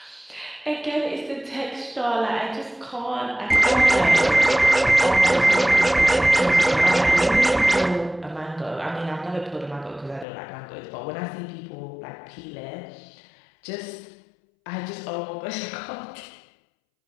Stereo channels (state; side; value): drops out; right; at 10.2 s